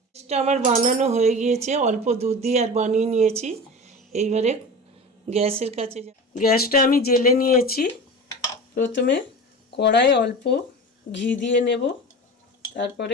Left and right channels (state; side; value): normal; both; correlation 0.32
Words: এটা আমার বানানো হয়ে গিয়েছে, অল্প দুধ দিয়ে আর বানিয়ে নিয়েছি। এইবারে গ্যাসের কাছে গ্যাসটা আমি জ্বেলে নিয়েছি। প্রথমে কড়ায় অল্প ঘি দিয়ে নেব, তারপরে